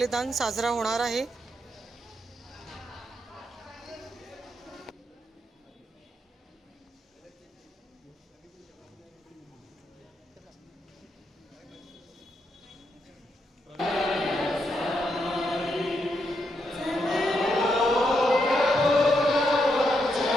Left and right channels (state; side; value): normal; both; correlation 0.80